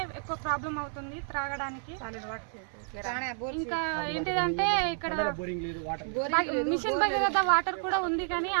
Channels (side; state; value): left; silent; 58 dB below the other